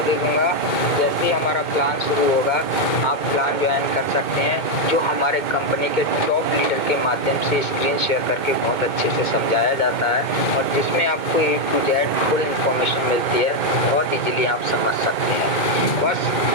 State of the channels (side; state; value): right; late; 2.1 ms